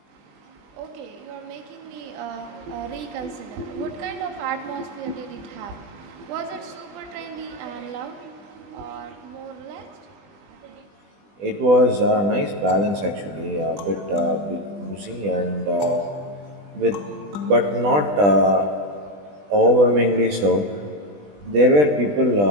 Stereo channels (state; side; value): late; left; 20 ms